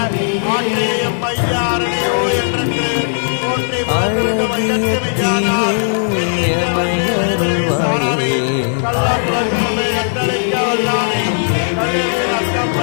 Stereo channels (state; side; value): silent; right; 69 dB below the other